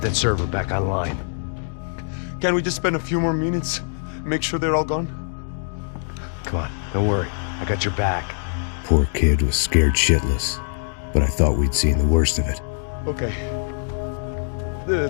that server back online. Can't we just spend a few more minutes? Make sure they're all gone? Come on, don't worry. I got your back. Poor kid was scared shitless, but I thought we'd seen the worst of it. Okay.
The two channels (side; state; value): right; silent; digital silence